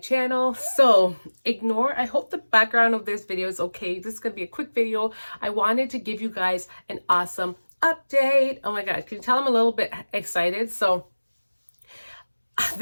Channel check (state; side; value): inverted; both; correlation -1.00